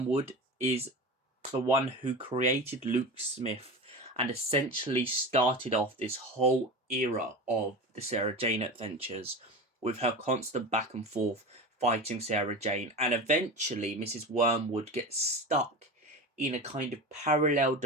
is the one who created Luke Smith and essentially started off this whole era of the Sarah Jane Adventures with her constant back and forth fighting Sarah Jane. And eventually, Mrs. Wormwood gets stuck in a kind of parallel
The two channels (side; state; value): both; normal; correlation 0.27